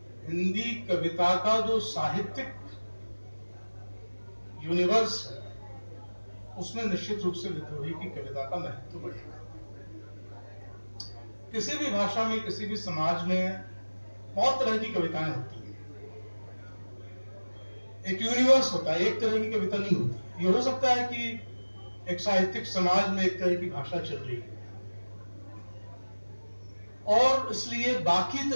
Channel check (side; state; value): both; inverted; correlation -1.00